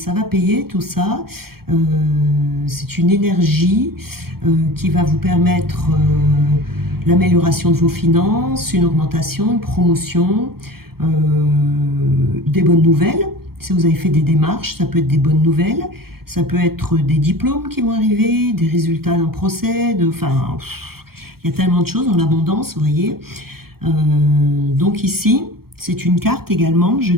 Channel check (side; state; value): left; late; 0.94 ms